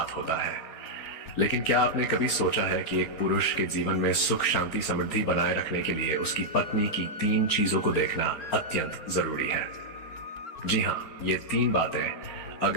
होता है, लेकिन क्या आपने कभी सोचा है कि एक पुरुष के जीवन में सुख, शांति, समृद्धि बनाए रखने के लिए उसकी पत्नी की 3 चीजों को देखना अत्यंत जरूरी है। जी हाँ, ये 3 बातें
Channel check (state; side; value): late; right; 4.3 ms